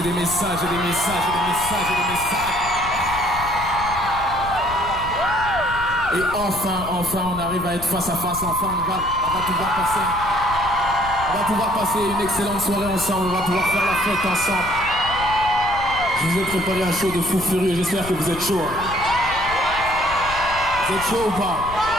des messages et des messages et des messages et des messages. Et enfin, on arrive à être face à face, enfin, on va pouvoir passer une excellente soirée ensemble, on va pouvoir faire la fête ensemble. Je vous ai préparé un show de fou furieux, j'espère que vous êtes chaud. Vous êtes chaud ou pas?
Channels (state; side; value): noise; left; rumble, 13 dB below the sound